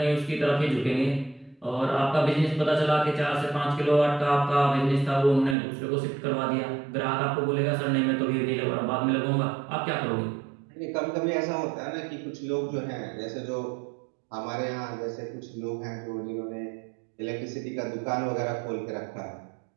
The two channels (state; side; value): drops out; left; at 5.6 s